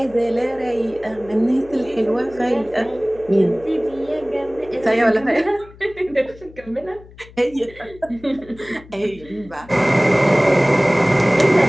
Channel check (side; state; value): left; noise; hum, 22 dB below the sound